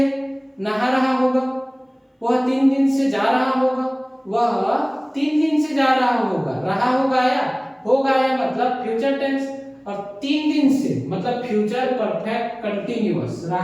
नहा रहा होगा, वह 3 दिन से जा रहा होगा, वह 3 दिन से जा रहा होगा, रहा होगा या मतलब फ्यूचर टेंस, और 3 दिन से मतलब फ्यूचर परफेक्ट कंटीन्यूअस,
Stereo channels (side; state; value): both; identical; correlation 1.00